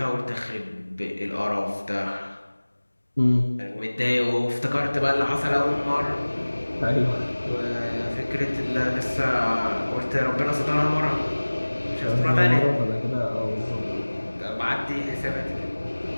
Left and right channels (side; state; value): both; inverted; correlation -1.00